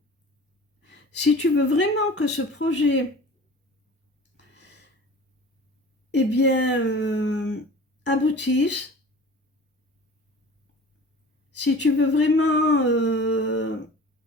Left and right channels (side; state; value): both; normal; correlation 0.41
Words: si tu veux vraiment que ce projet, eh bien, aboutisse, si tu veux vraiment